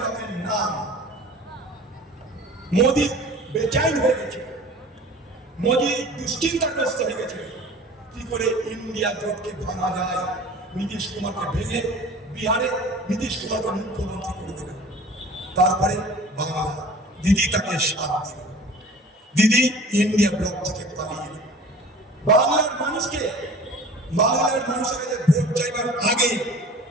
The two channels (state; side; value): normal; both; correlation 0.43